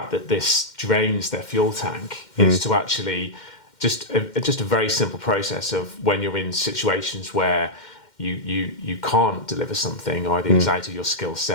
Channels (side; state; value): right; late; 2.1 ms